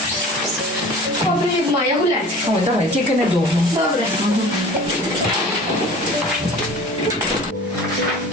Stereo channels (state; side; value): normal; both; correlation 0.42